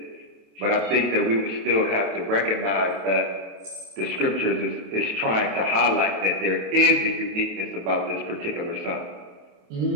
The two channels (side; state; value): left; late; 27 ms